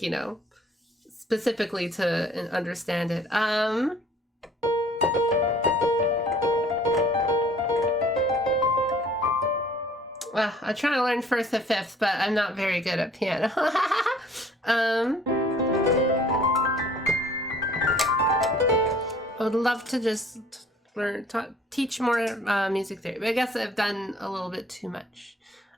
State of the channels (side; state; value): both; normal; correlation 0.55